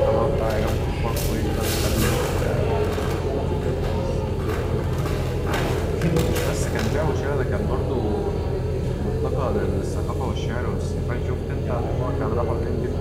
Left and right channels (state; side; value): identical; both; correlation 1.00